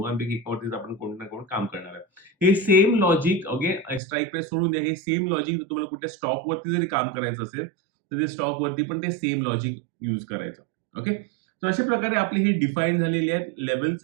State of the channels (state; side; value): drops out; left; at 4.0 s